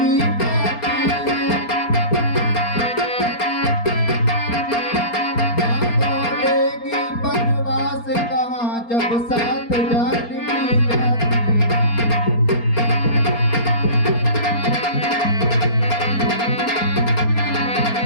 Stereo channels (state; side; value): late; right; 4.3 ms